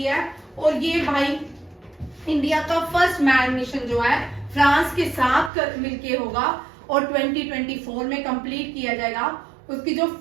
है। और ये भाई इंडिया का फर्स्ट मैन मिशन जो है फ्रांस के साथ मिलके होगा और 2024 में कंप्लीट किया जाएगा। उसकी जो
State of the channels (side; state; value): left; drops out; at 5.5 s